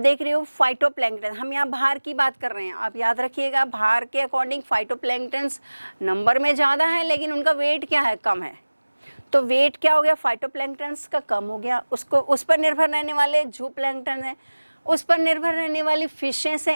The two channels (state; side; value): inverted; both; correlation -1.00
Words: रहे हो फाइटोप्लैंक्टन। हम यहाँ भार की बात कर रहे हैं, आप याद रखिएगा भार के अकॉर्डिंग फाइटोप्लैंक्टन्स नंबर में ज़्यादा है लेकिन उनका वेट क्या है, कम है। तो वेट क्या हो गया, फाइटोप्लैंक्टन्स का कम हो गया, उसको उस पर निर्भर रहने वाले जूप्लैंक्टन हैं, उस पर निर्भर रहने वाली फिशेस